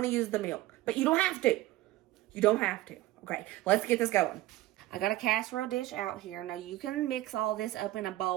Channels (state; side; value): quieter; left; 16.6 dB